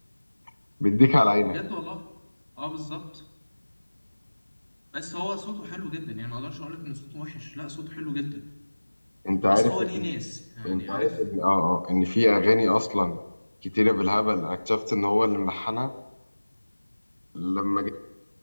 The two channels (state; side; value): inverted; both; correlation -1.00